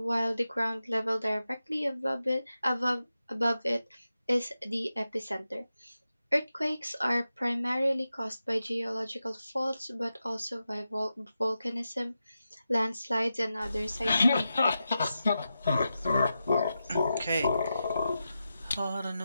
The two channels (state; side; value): inverted; both; correlation -0.90